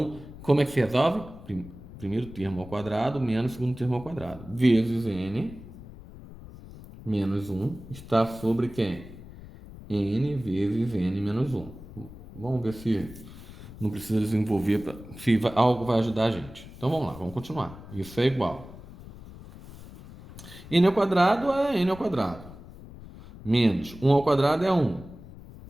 como é que se resolve? Primeiro termo ao quadrado menos segundo termo ao quadrado. Vezes N menos 1 está sobre quem? N vezes N menos 1. Vamos ver se não precisa desenvolver, se algo vai ajudar a gente. Então vamos lá, vamos continuar. Isso é igual. N ao quadrado é N ao quadrado. Menos 1 ao quadrado é 1.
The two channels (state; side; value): noise; left; rumble, 16 dB below the sound